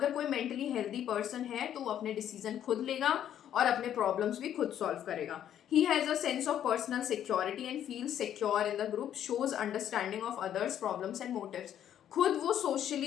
कोई मेंटली हेल्दी पर्सन है तो वो अपने डिसीजन खुद लेगा और अपने प्रॉब्लम्स भी खुद सॉल्व करेगा। He has a sense of personal security and feels secure in the group, shows understanding of others' problems and motives। खुद वो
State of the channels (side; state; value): right; quieter; 10.4 dB